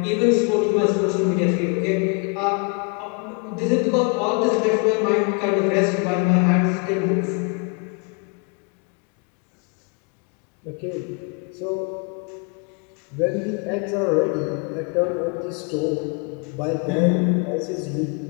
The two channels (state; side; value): quieter; right; 35.0 dB